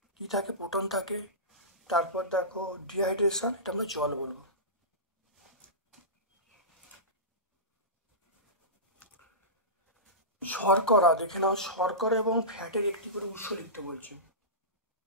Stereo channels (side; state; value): both; normal; correlation -0.19